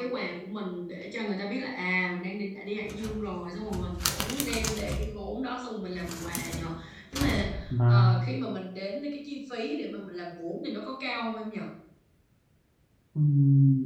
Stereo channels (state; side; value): identical; both; correlation 1.00